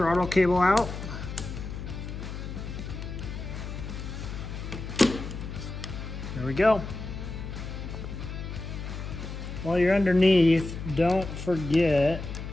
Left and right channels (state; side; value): noise; left; hum, 8 dB below the sound